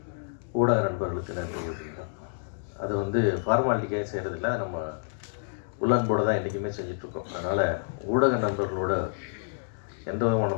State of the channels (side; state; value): right; silent; digital silence